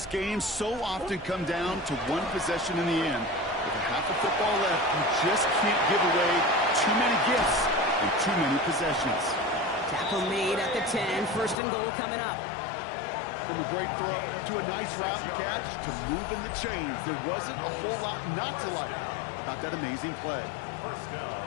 games so often come down to 1 possession in the end? With a half of football left, you just can't give away too many gifts and too many possessions. Tackle made at the 10. 1st and goal coming up. From a great throw to a nice route and catch to moving the chains. There wasn't a whole lot not to like about that amazing play. 1st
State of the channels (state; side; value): drops out; right; at 11.6 s